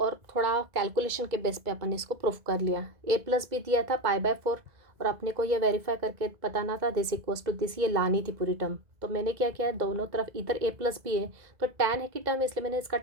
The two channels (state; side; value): late; left; 2.0 ms